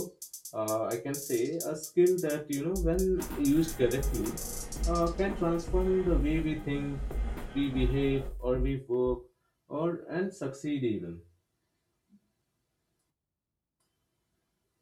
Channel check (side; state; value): both; identical; correlation 1.00